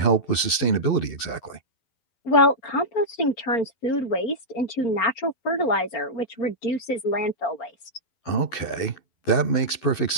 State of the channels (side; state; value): right; late; 12 ms